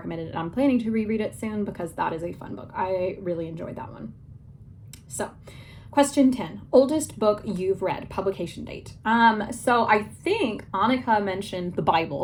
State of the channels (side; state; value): both; identical; correlation 1.00